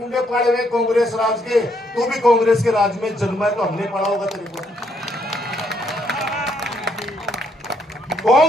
पाड़े हुए कांग्रेस राज के। तू भी कांग्रेस के राज में जन्मा है तो हमने पढ़ा होगा तेरे को।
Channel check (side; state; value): both; normal; correlation 0.72